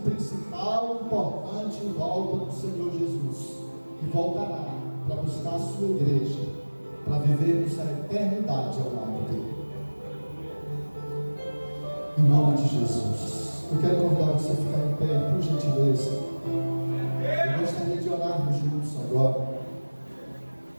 principal importante volta do Senhor Jesus, que voltará para buscar a sua igreja, para vivermos a eternidade ao lado dele. Em nome de Jesus, eu quero convidar você a ficar em pé, por gentileza. Eu gostaria de orarmos juntos agora.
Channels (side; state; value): both; inverted; correlation -1.00